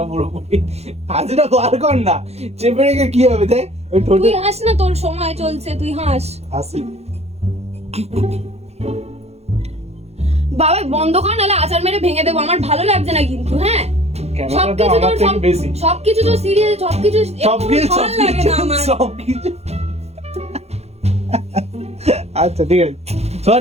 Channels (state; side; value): late; left; 0.31 ms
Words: পুরোপুরি। হাসিটা বার কর না, চেপে রেখে কি হবে দেখ ওই ঠোঁটে। তুই হাস না, তোর সময় চলছে, তুই হাস। হাসি বাবা বন্ধ কর, নাহলে আচার মেরে ভেঙে দেবো। আমার ভালো লাগছে না কিন্তু। হ্যাঁ, ক্যামেরাটা আমার থেকে বেশি। সবকিছু তো সিরিয়াস, সবকিছু ভালো লাগে না আমার। সবকিছু আচ্ছা ঠিক আছে,